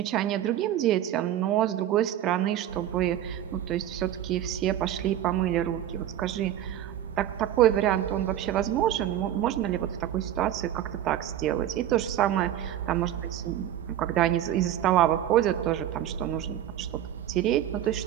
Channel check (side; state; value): left; quieter; 11.7 dB